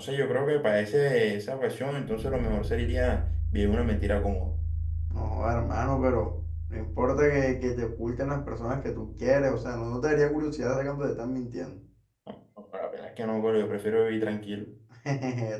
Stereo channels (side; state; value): both; identical; correlation 1.00